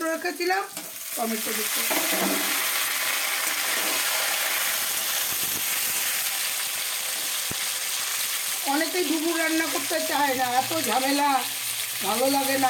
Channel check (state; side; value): identical; both; correlation 1.00